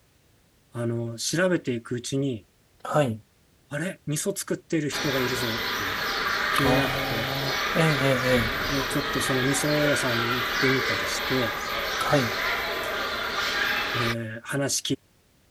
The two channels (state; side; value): identical; both; correlation 1.00